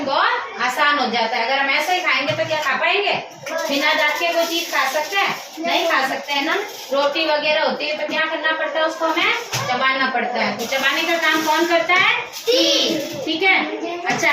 बहुत आसान हो जाता है। अगर हम ऐसे ही खाएंगे तो क्या खा पाएंगे, बिना दांत के कोई चीज खा सकते हैं, नहीं खा सकते हैं ना। रोटी वगैरह होती है तो क्या करना पड़ता है, उसको हमें चबाना पड़ता है। तो चबाने का काम कौन करता है, टीथ, ठीक है। अच्छा,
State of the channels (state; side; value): identical; both; correlation 1.00